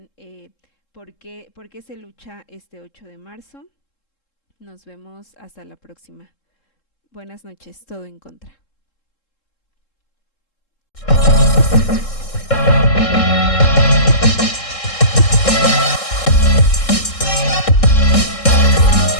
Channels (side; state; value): right; late; 3.7 ms